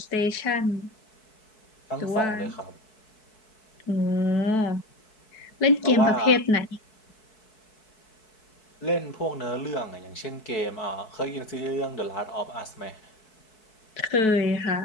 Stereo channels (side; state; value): right; late; 4.6 ms